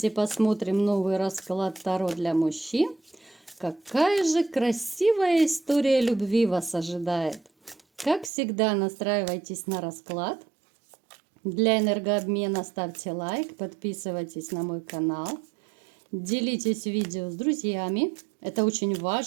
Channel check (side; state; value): left; drops out; at 8.3 s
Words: посмотрим новый расклад Таро для мужчин. Какая же красивая история любви вас ожидает. Как всегда, настраивайтесь на расклад. Для энергообмена ставьте лайк, подписывайтесь на мой канал. Делитесь видео с друзьями. Это очень